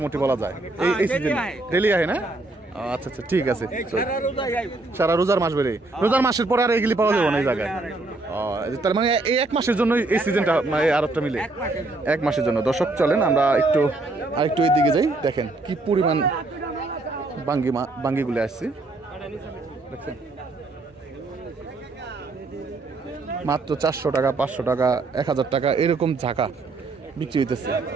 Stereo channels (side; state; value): left; quieter; 3.2 dB